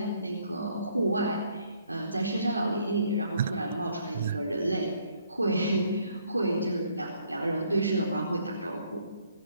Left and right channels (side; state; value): both; inverted; correlation -0.66